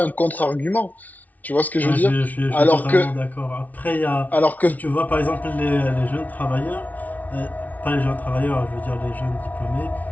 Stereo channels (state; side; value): late; right; 0.075 ms